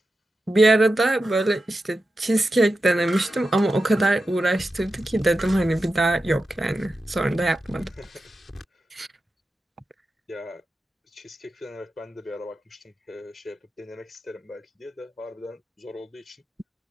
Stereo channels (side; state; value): both; normal; correlation 0.91